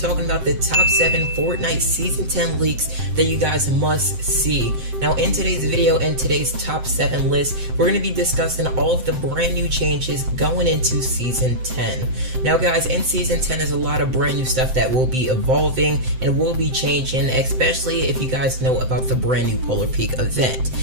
about the top 7 Fortnite season 10 leaks that you guys must see. Now in today's video and today's top 7 list, we're going to be discussing all of the brand new changes going into season 10. Now guys, in season 10 there's a lot of brand new stuff that will be evolving and will be changing, especially if you guys know about the brand new Polar Peak event.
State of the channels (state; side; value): late; left; 7.7 ms